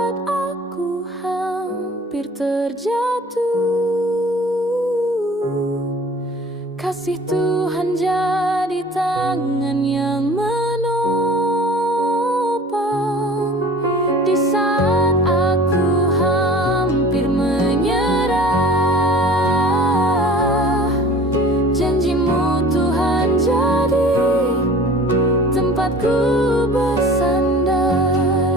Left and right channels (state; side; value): normal; both; correlation 0.45